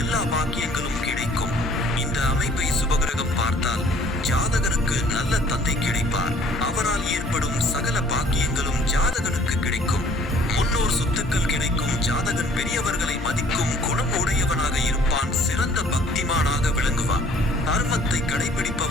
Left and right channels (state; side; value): normal; both; correlation 0.55